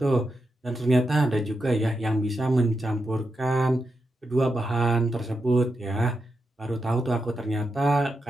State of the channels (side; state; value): both; normal; correlation 0.86